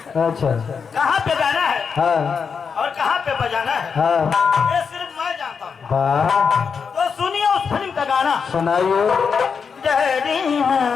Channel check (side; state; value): right; quieter; 6.0 dB